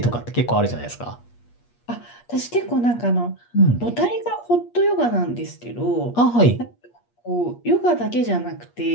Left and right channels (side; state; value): right; late; 8.4 ms